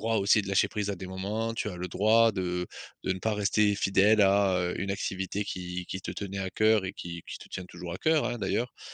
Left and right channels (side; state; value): both; identical; correlation 1.00